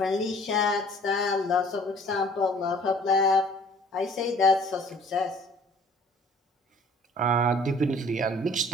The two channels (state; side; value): normal; both; correlation 0.54